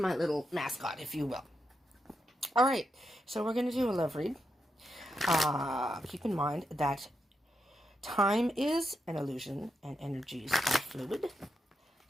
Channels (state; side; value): normal; both; correlation 0.84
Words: little mascot, if you will. All right, so we're going to do a love read. Keep in mind that time is an illusion and energies are fluid.